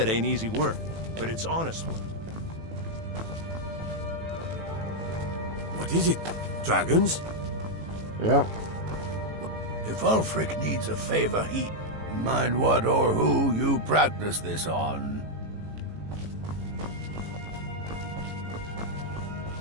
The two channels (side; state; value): left; late; 18 ms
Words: ain't easy work, but it's honest work. What is it? Dragons? Yeah. If Ulfric needs a favor, he... Mind what or who you practice this on.